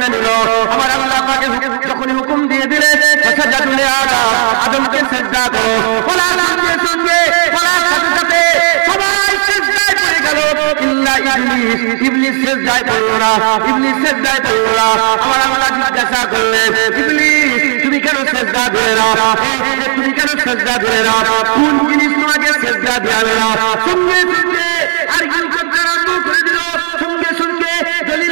নিল। আমার আল্লাহ পাকের যখন হুকুম দিয়ে দিলেন সাজদা তুলে আদমকে সিজদা করো, বলার সঙ্গে সঙ্গে বলার সাথে সাথে সবাই সিজদায় পড়ে গেল, ইল্লা ইবলিস। ইবলিস সিজদায় পড়ল না, ইবলিস সিজদায় পড়ল না। আমার আল্লাহ জিজ্ঞাসা করলেন, ইবলিস তুমি কেন সিজদা দিলে না? তুমি কেন সিজদা দিলে না? কোন জিনিস তোমাকে সিজদা দেওয়াবে না? সঙ্গে সঙ্গে আরগুন করতে আরম্ভ করে দিল, সঙ্গে সঙ্গে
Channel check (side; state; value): left; silent; 55 dB below the other